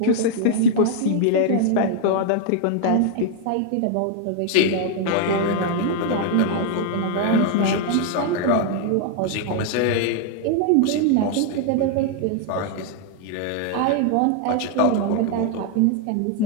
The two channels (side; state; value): both; different; correlation 0.00